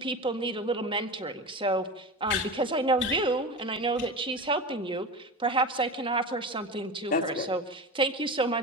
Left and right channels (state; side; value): normal; both; correlation 0.26